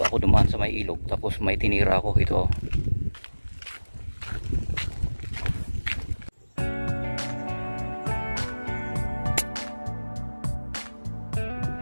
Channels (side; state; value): both; inverted; correlation -1.00